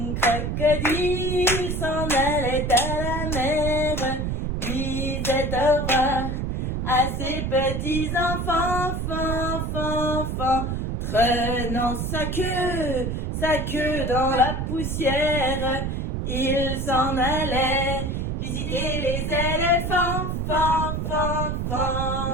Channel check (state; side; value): noise; right; rumble, 2 dB below the sound